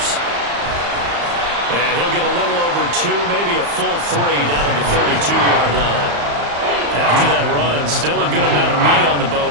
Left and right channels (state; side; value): late; left; 35 ms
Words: And he'll get a little over 2, maybe a full 3 down at the 32-yard line. After that run, still a good amount of meat on the